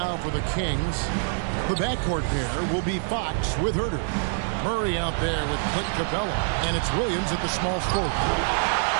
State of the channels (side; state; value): left; silent; 61 dB below the other